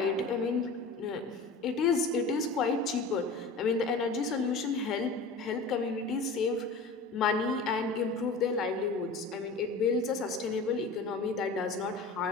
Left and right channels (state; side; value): quieter; right; 3.7 dB